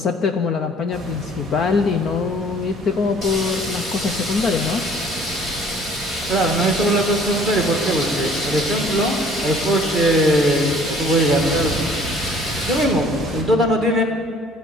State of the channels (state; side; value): normal; both; correlation 0.55